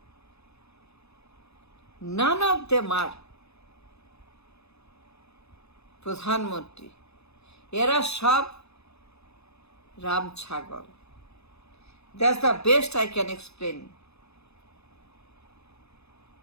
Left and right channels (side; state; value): right; late; 0.79 ms